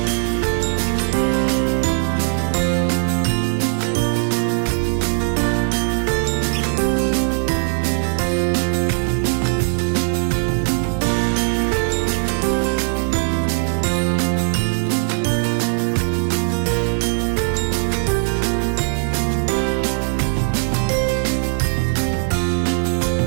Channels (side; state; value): left; silent; 56 dB below the other